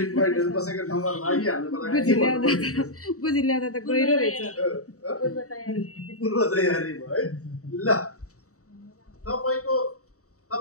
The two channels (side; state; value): right; late; 0.65 ms